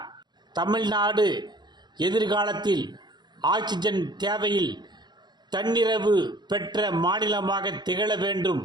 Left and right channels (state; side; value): late; left; 0.21 ms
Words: தமிழ்நாடு எதிர்காலத்தில் ஆக்சிஜன் தேவையில் தன்னிறைவு பெற்ற மாநிலமாக திகழ வேண்டும்